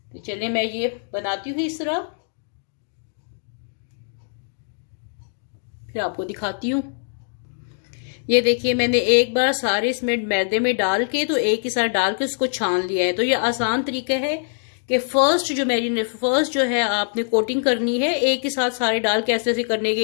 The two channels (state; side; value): silent; right; digital silence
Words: तो चलिए मैं ये बनाती हूँ इस तरह, फिर आपको दिखाती हूँ। ये देखिए मैंने एक बार सारे इसमें मैदे में डाल के, तो एक ही साथ डाल के उसको छान लिया है। तो ये आसान तरीका है कि फर्स्ट जो है आपने कोटिंग करनी है, एक ही साथ सारे डाल के ऐसे ऐसे करने के,